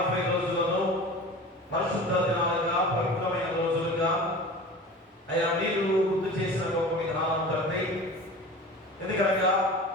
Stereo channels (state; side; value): normal; both; correlation 0.36